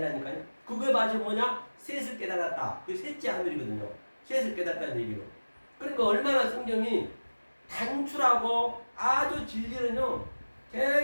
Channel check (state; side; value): inverted; both; correlation -1.00